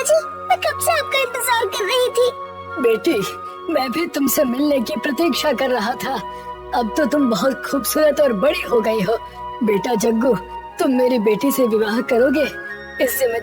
मैं कब से आपका इंतजार कर रही थी। बेटी, मैं भी तुमसे मिलने की प्रतीक्षा कर रहा था। अब तो तुम बहुत खूबसूरत और बड़ी हो गई हो। बेटा जग्गू, तुम मेरी बेटी से विवाह करोगे? इस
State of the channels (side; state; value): both; identical; correlation 1.00